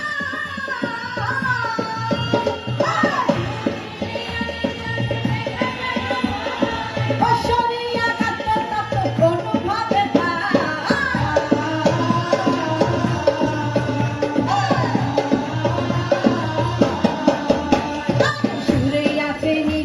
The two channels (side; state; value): both; identical; correlation 1.00